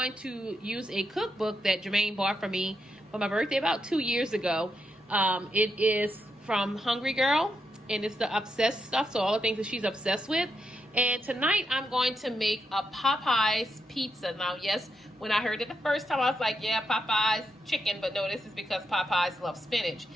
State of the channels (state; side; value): normal; both; correlation 0.82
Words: to use a cookbook that Jermaine bought for me for my birthday about 2 years ago. It is from Hungry Girl, and it's the obsessed stuff, so all the things that she's obsessed with. And tonight I'm going to make a Popeyes pizza. Now, yes, when I heard it the first time, I was like, yeah, Popeyes chicken. But no, this is because Popeyes love spinach.